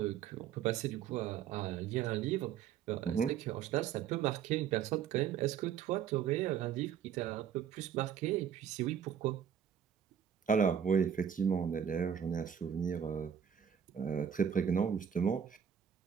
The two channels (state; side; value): quieter; left; 8.4 dB